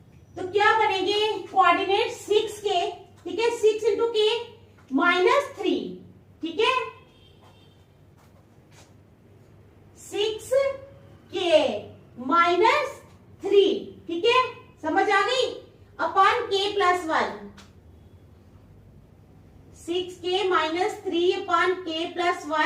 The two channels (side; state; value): both; identical; correlation 1.00